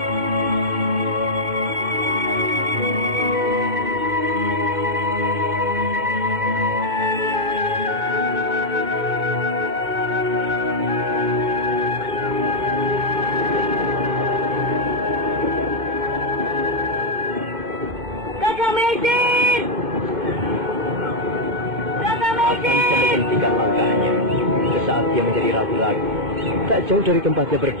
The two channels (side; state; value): left; late; 2.1 ms